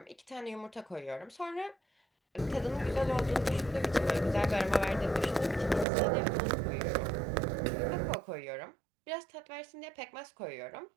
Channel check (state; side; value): drops out; left; at 5.9 s